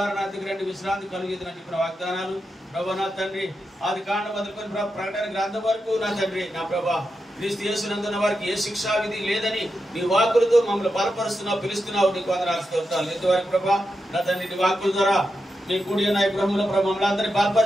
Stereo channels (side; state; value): both; normal; correlation 0.88